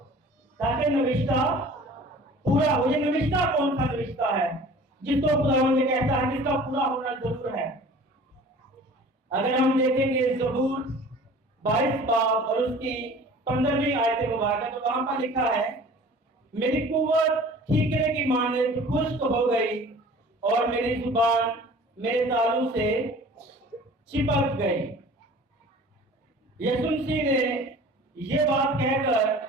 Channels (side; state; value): both; normal; correlation 0.45